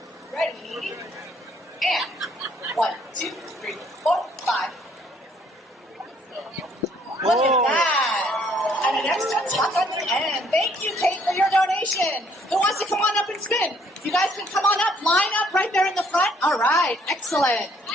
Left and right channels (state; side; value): normal; both; correlation 0.64